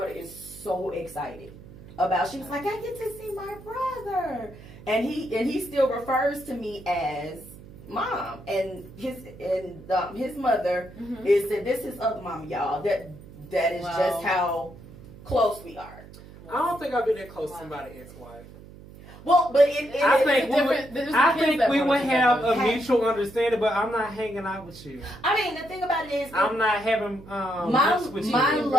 is so excited about. She was like, I get to see my brother, and he still refers to me as mom, and his mother is said this is other mom, y'all. That is just how close we are. I don't think I've been that close to somebody's ex-wife. Well, but I think we would have a mutual understanding, but I'm not hanging out with you. I mean, the thing about it is, I'm not having my love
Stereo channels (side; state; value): right; noise; hum, 18 dB below the sound